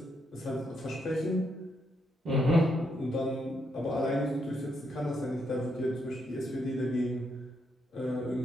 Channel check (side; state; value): both; normal; correlation 0.78